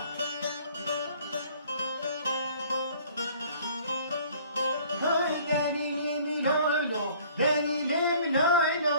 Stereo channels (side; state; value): both; inverted; correlation -0.53